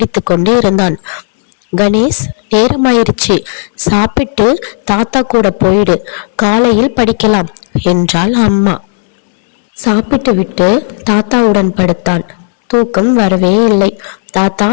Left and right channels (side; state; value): right; silent; digital silence